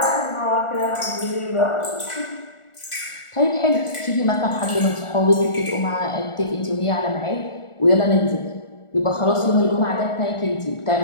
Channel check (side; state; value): right; late; 1.4 ms